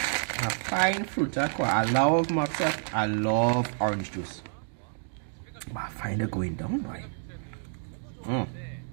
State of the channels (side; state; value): left; silent; 59 dB below the other